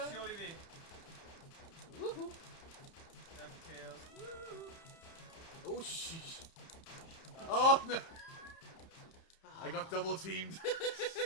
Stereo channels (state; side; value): late; right; 30 ms